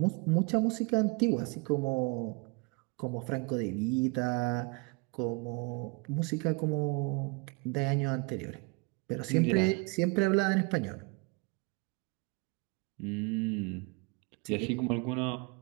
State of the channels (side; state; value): left; quieter; 29.9 dB